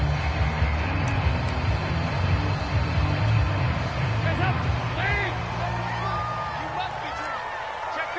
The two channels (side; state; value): both; identical; correlation 1.00